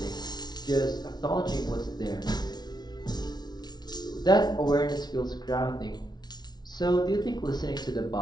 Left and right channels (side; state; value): right; late; 0.19 ms